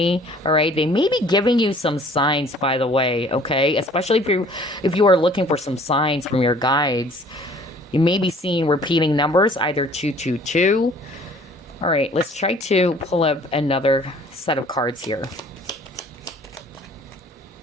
all right? They may be giving you some signs, by the way, okay? Especially if you are looking for some signs from your guides. You may be seeing repeating numbers, either 222. All right, let's try to pull up another set of cards here.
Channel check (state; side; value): normal; both; correlation 0.53